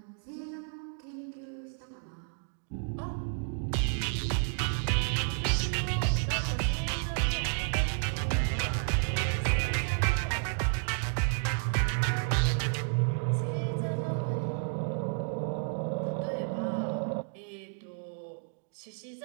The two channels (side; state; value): left; silent; 57 dB below the other